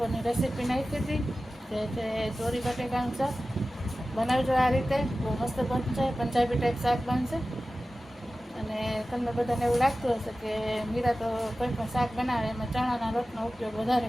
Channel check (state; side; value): normal; both; correlation 0.95